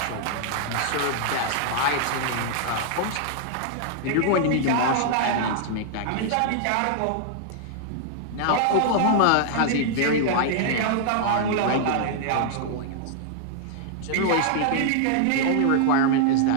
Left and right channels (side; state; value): both; different; correlation -0.01